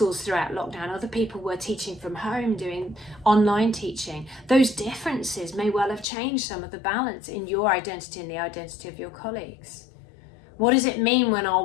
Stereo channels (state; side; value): drops out; right; at 6.1 s